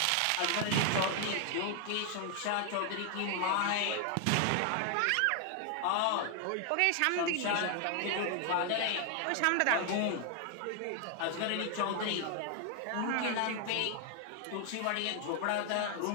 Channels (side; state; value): both; different; correlation 0.00